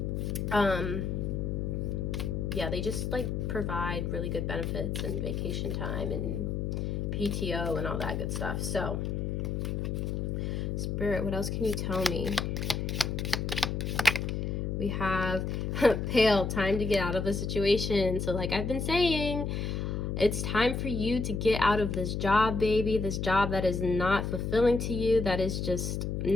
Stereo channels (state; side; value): noise; left; hum, 1 dB below the sound